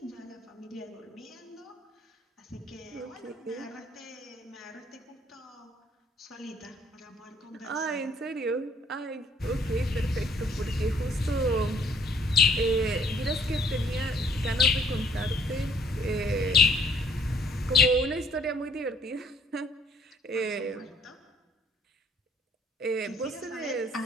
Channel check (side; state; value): both; normal; correlation 0.62